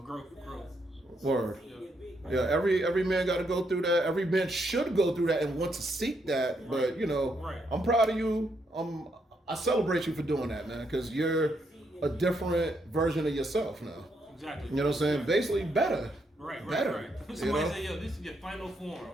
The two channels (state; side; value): normal; both; correlation 0.77